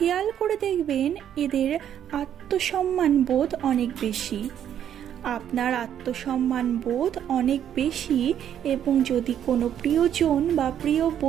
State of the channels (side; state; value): left; quieter; 9.9 dB